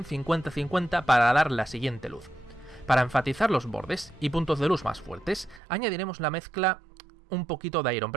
50-50 para dar la siguiente luz. Para enfatizar los bordes y puntos de luz más fuertes, añadiremos la mezcla un poquito de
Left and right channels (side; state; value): left; drops out; at 5.6 s